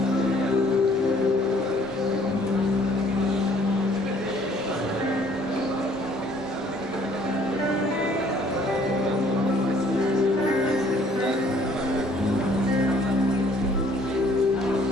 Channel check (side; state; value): both; normal; correlation 0.60